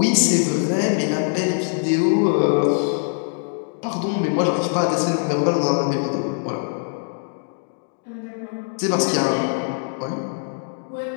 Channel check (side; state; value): right; silent; digital silence